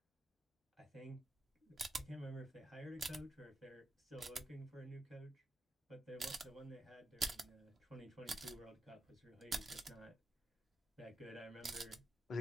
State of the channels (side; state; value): both; normal; correlation 0.86